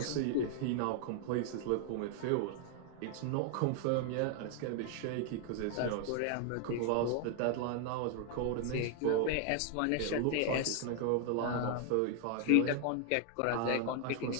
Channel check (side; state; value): both; different; correlation 0.00